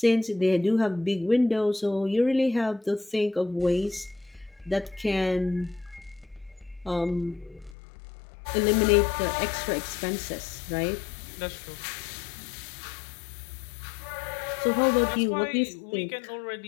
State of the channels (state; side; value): drops out; right; at 7.8 s